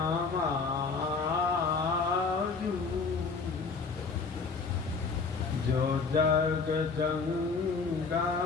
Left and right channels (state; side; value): quieter; right; 4.7 dB